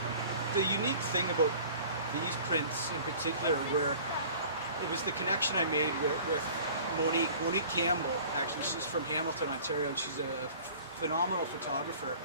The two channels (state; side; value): inverted; both; correlation -0.46